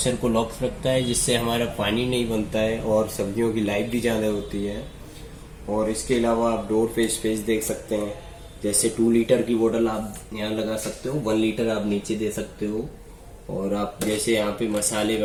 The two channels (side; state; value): both; identical; correlation 1.00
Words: को लॉक रखता है, जिससे हमारा पानी नहीं बनता है और सब्जियों की लाइफ भी ज़्यादा होती है। और इसके अलावा आप डोर पे स्पेस देख सकते हैं। जैसे 2 लीटर की बोतल आप यहाँ लगा सकते हो, 1 लीटर आप नीचे दे सकते हो। और आप जैसे यहाँ पे मसाले